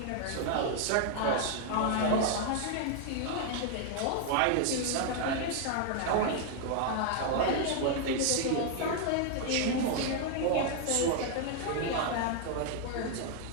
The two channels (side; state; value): both; different; correlation 0.00